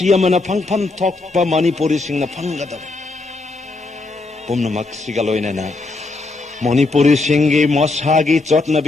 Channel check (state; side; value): quieter; right; 3.4 dB